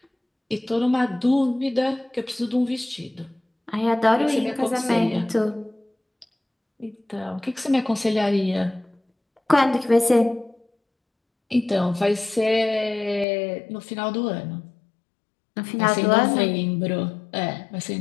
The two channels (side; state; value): right; drops out; at 13.2 s